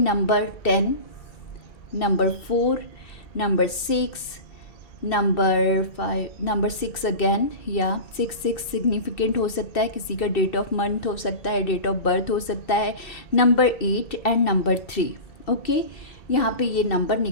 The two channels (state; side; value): late; right; 2.6 ms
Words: 10, number 4, number 6, number 5, number 6 again, या 6 सिग्निफिकेंट हो सकता है, किसी का डेट ऑफ मंथ हो सकता है, डेट ऑफ बर्थ हो सकता है, नंबर 8 एंड नंबर 3। ओके, यहाँ पे ये नंबर